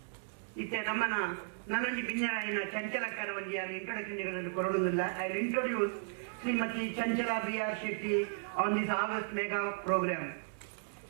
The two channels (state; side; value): silent; left; digital silence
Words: ಇತ್ತೆ ನಮ್ಮನ ನನ್ನೊಂಜಿ ಬಿನ್ನೆರಾಯಿನ ಚಂಚಲಕ್ಕರ ಒಂಜಿ ಯಾರು ಇಂಟ್ರೊಡಕ್ಷನ್ಗಳನ್ನು ಕೊರಡುವುದಿಲ್ಲ. I will introduce Shrimati Chanchala B.R. Shetty on this August mega program.